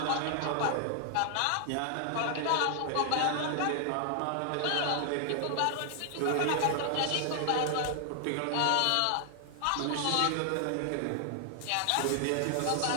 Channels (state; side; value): different; both; correlation 0.00